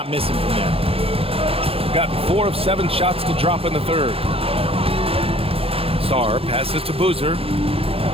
missing from there. Gotten 4 of 7 shots to drop in the third. Sarr passes to Boozer.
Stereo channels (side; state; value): left; late; 0.27 ms